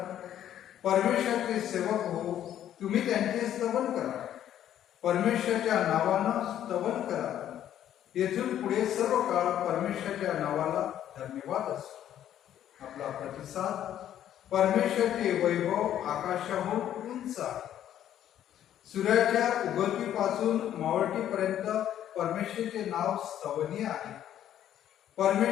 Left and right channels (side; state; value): right; quieter; 11.1 dB